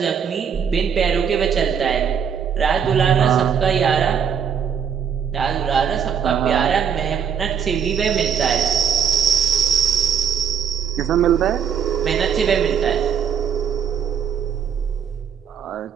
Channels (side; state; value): left; quieter; 7.6 dB